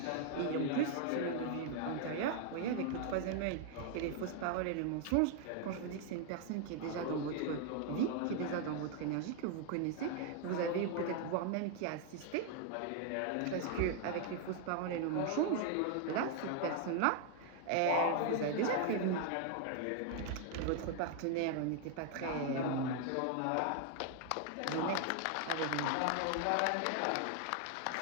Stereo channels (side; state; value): both; different; correlation 0.00